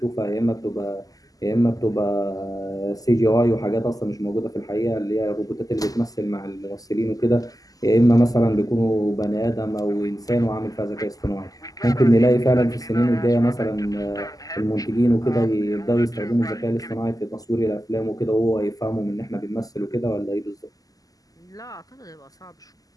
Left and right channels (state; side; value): late; right; 0.17 ms